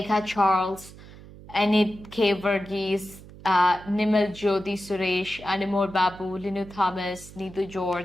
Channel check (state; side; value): noise; right; hum, 18 dB below the sound